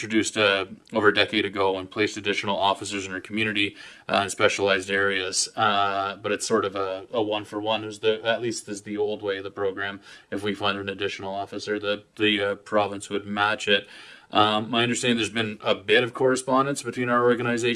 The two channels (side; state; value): both; identical; correlation 1.00